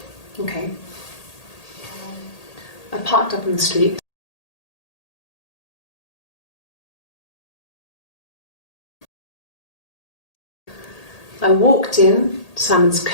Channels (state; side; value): late; right; 1.8 ms